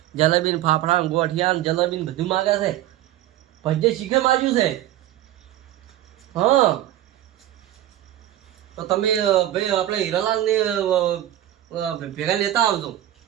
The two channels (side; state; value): left; quieter; 13.3 dB